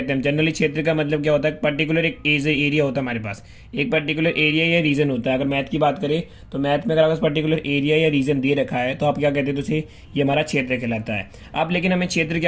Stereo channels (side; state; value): both; identical; correlation 1.00